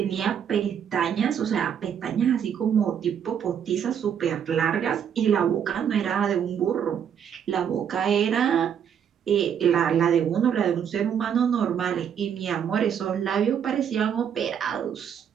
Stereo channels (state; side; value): quieter; left; 8.4 dB